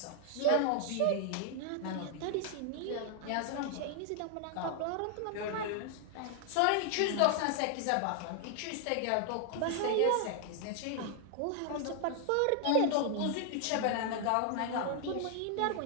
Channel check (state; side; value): different; both; correlation 0.00